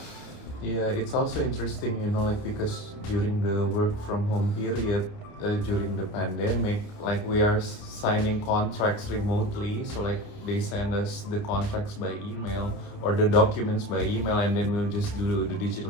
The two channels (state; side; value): late; right; 29 ms